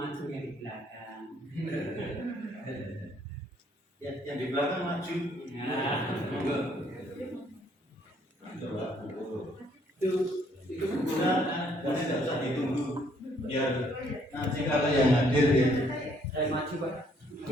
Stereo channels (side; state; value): both; normal; correlation 0.66